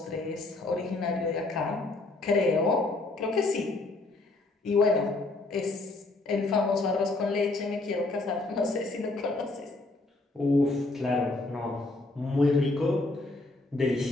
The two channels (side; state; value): right; quieter; 3.1 dB